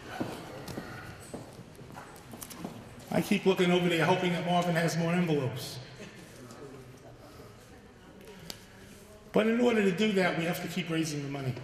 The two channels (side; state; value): both; identical; correlation 1.00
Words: I keep looking over there hoping that Marvin has more envelopes. But in order to do that, we have to keep raising the money.